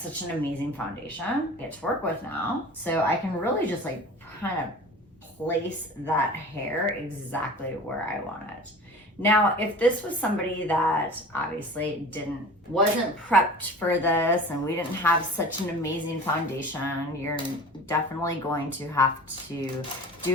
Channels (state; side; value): normal; both; correlation 0.39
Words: an amazing foundation I get to work with now. So I can really just like kind of place that hair exactly where I want it. Now, if this was somebody that obviously wasn't prepped for this and we didn't have such an amazing foundation, you're definitely going to have to